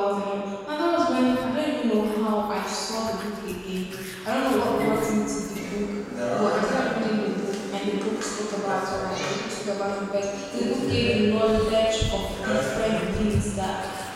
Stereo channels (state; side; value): identical; both; correlation 1.00